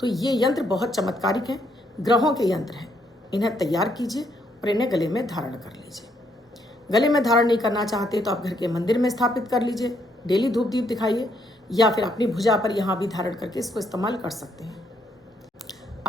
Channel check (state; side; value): normal; both; correlation 0.73